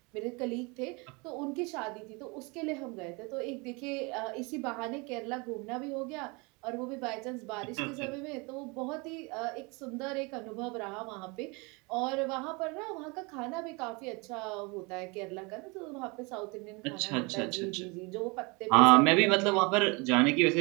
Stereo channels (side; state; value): left; quieter; 28.3 dB